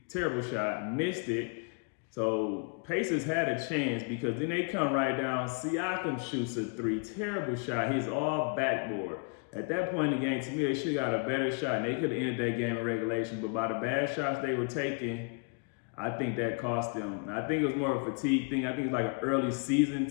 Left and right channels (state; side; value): quieter; right; 35.5 dB